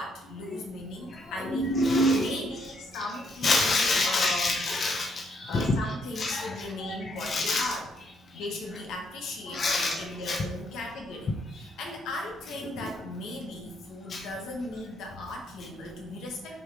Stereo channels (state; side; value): normal; both; correlation 0.72